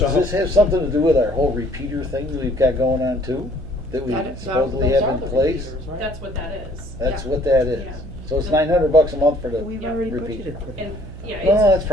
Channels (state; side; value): noise; right; hum, 13 dB below the sound